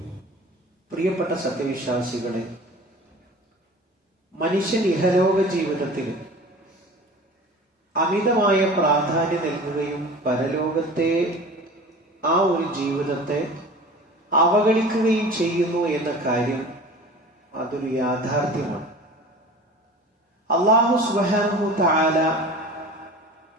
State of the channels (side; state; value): both; normal; correlation 0.39